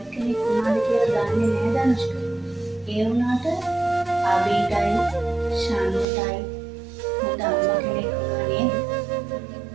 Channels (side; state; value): left; drops out; at 6.1 s